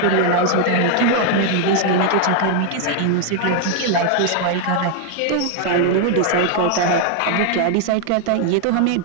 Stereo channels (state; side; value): different; both; correlation 0.00